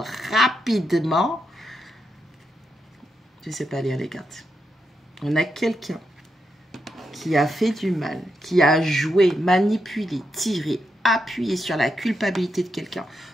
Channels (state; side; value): normal; both; correlation 0.84